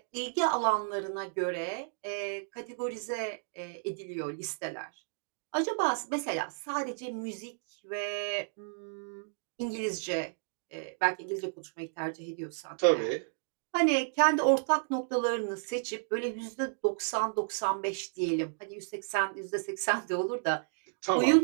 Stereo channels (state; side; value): silent; left; digital silence